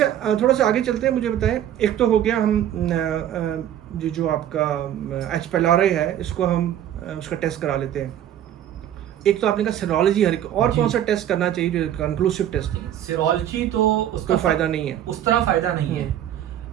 थोड़ा सा आगे चलते हैं, मुझे बताएं, एक तो हो गया हम जो आपका एच पेलारे है, इसको हम उसका टेस्ट करा लेते हैं। एक तो आपने कहा सीरोलॉजी, हर एक और कौन सा टेस्ट करना चाहिए जो कंक्लूसिव टेस्ट है? सीरोलॉजी तो उसका कोई फायदा नहीं है, उस तरह फायदा नहीं है।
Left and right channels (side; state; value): left; quieter; 11.0 dB